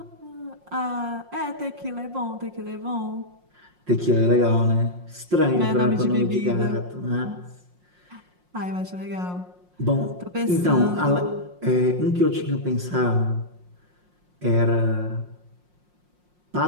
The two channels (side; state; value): left; late; 5.6 ms